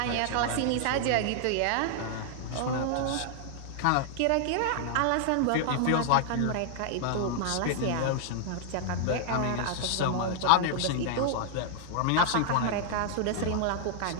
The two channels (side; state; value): both; different; correlation -0.01